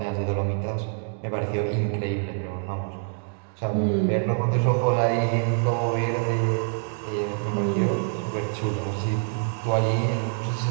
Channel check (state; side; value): silent; left; 56 dB below the other